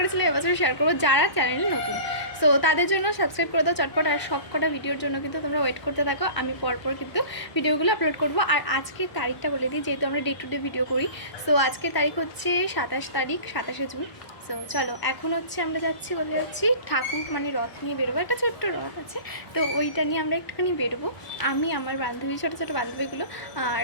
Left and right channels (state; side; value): late; right; 1.0 ms